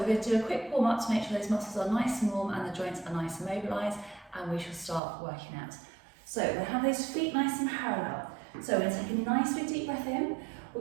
going to do a quick warm up to make sure those muscles are nice and warm and the joints are nice and mobilised, and we shall start working out. So we're going to have those feet nice and parallel. So we're going to take a nice big deep breath in,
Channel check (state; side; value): drops out; left; at 5.0 s